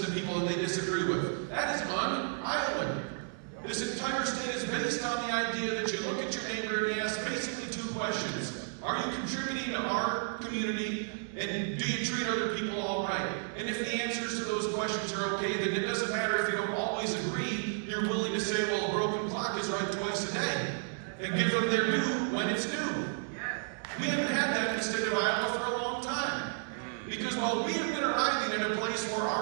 to people that they disagree with. That is un-Iowan. This entire state is based on the idea that you look at your neighbor and you ask basically 2 questions. Are you contributing to our community? And do you treat other people all right? And if the answers to those questions are okay, then it doesn't matter if you don't always agree. You're willing to say, well, a broken clock is right twice a day. And give them their due when it's due. We haven't had that in the state of Iowa for a long time. Because while we have been arriving in a place where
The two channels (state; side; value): silent; left; 56 dB below the other